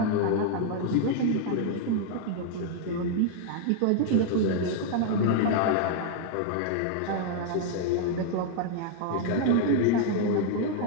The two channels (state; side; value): different; both; correlation -0.01